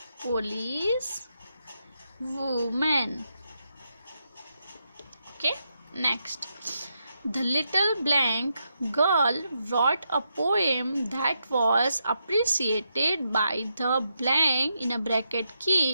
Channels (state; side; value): inverted; both; correlation -0.82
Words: Police woman. Okay, next. The little blank girl wrote a poem that was appreciated by the blank in a bracket